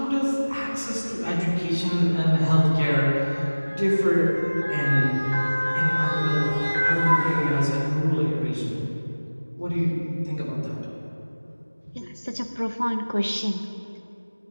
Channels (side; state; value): both; inverted; correlation -1.00